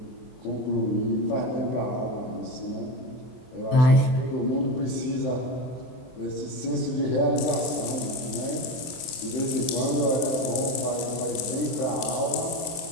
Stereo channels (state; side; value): late; right; 24 ms